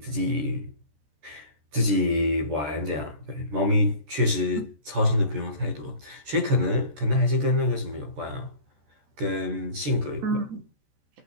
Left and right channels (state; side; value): late; left; 14 ms